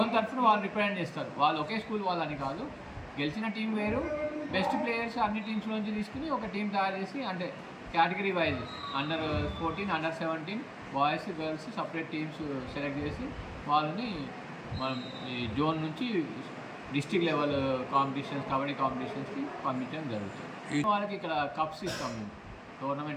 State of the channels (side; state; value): both; identical; correlation 1.00